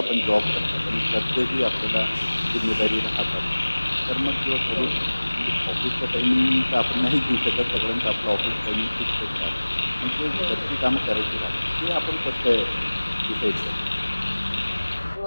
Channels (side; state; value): both; inverted; correlation -1.00